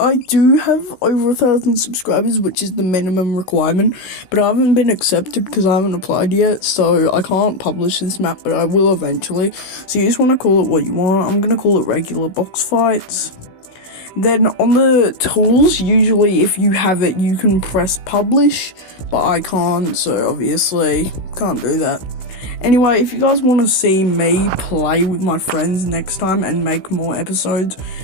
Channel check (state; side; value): late; right; 16 ms